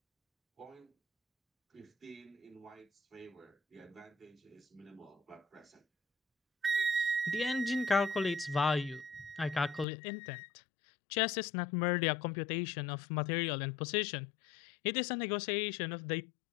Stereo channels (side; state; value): right; drops out; at 9.9 s